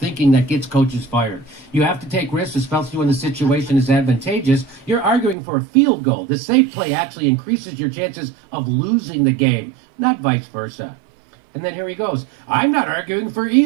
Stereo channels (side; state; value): left; drops out; at 5.4 s